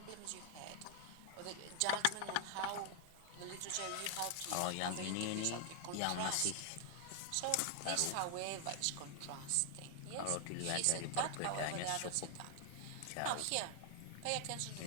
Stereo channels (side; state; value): both; different; correlation 0.00